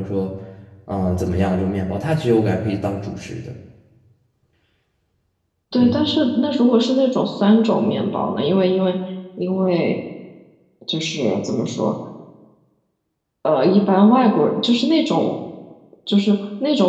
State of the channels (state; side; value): identical; both; correlation 1.00